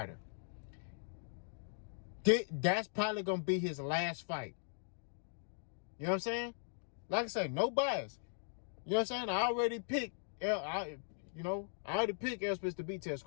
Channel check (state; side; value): silent; right; digital silence